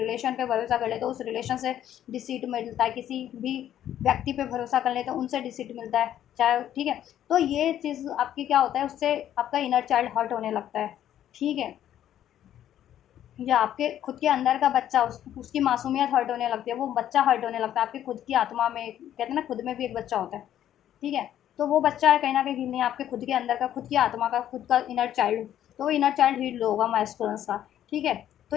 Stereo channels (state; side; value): quieter; right; 11.2 dB